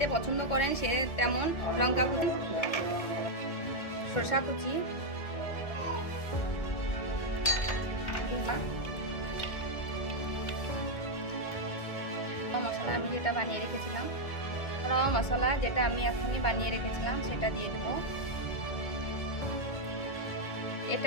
পছন্দ করেন সে তেমন লঙ্কা কুচি, শসা কুচি, মশলা আমি যেটা বানিয়ে রেখেছিলাম, মশলা যেটা আমি এখনই বানিয়ে রেখেছিলাম সেটা দিয়ে দেব।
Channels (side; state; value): right; late; 1.7 ms